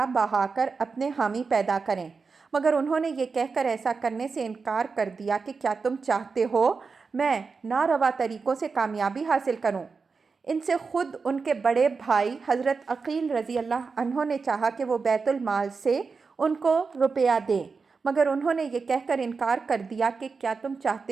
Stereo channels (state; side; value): quieter; left; 4.8 dB